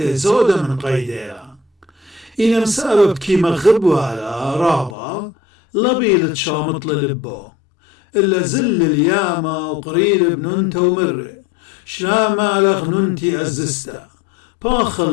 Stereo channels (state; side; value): drops out; right; at 5.0 s